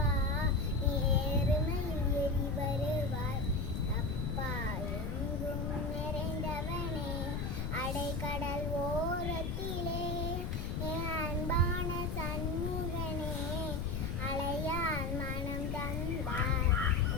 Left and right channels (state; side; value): noise; left; rumble, 1 dB below the sound